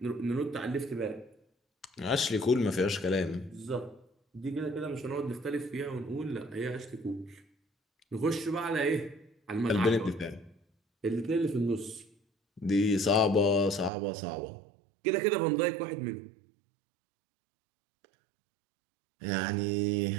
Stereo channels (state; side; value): drops out; left; at 13.9 s